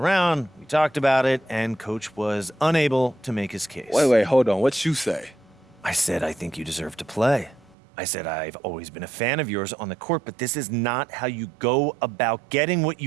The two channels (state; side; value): drops out; left; at 7.8 s